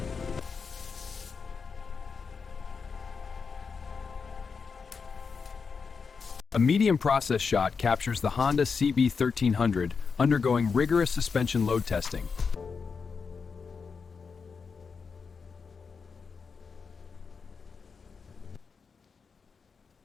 A medium process shot captures the Honda CB1300 undergoing rigorous suspension load testing.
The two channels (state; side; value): quieter; right; 5.4 dB